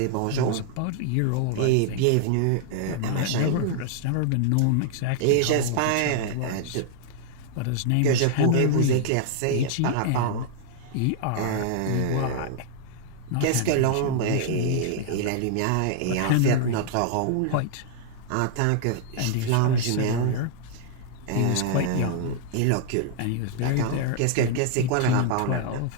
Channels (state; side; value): different; both; correlation 0.00